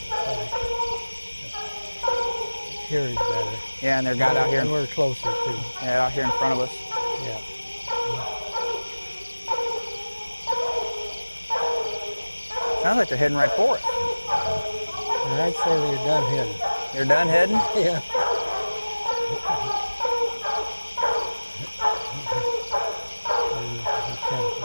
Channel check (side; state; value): both; inverted; correlation -1.00